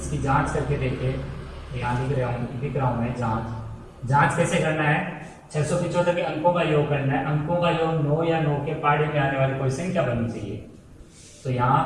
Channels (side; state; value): both; identical; correlation 1.00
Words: जांच करके देखें। यहाँ लिख रहा हूँ मैं जांच कैसे करना है। 675 के अंकों का योग करना है। अंकों का योग 9 या 9 के पहाड़े में आने वाली कोई संख्या बननी चाहिए। तो यहाँ